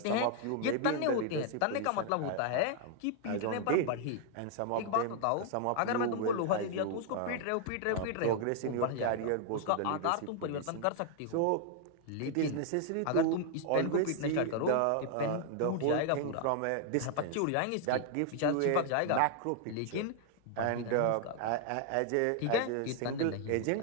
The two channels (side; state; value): both; different; correlation 0.00